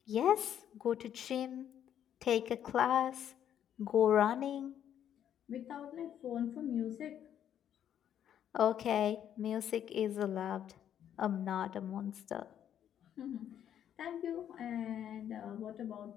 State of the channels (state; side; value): quieter; right; 9.9 dB